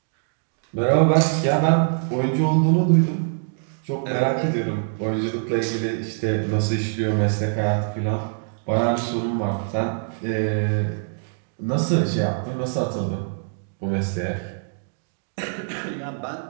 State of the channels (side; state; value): left; silent; digital silence